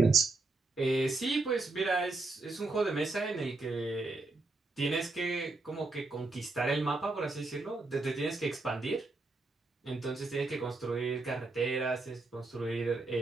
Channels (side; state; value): left; quieter; 3.4 dB